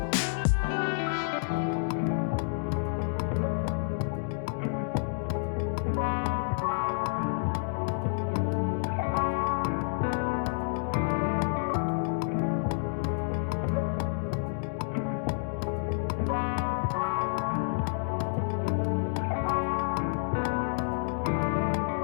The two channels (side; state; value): right; silent; digital silence